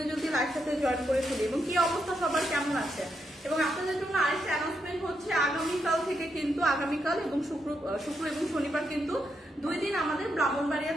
জলদি লাইভ সাথে জয়েন করে ফেলি। এবং কি অবস্থা সবার কেমন আছে? এবং আপনাদের জন্য আরেকটা অ্যানাউন্সমেন্ট হচ্ছে, আগামীকাল থেকে কিন্তু আগামীকাল এবং শুক্র এবং শনিবার কিন্তু 2 দিন আমাদের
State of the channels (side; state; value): both; normal; correlation 0.81